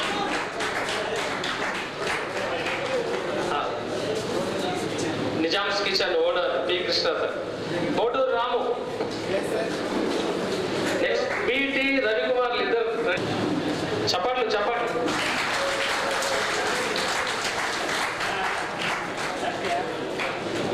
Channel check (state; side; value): identical; both; correlation 1.00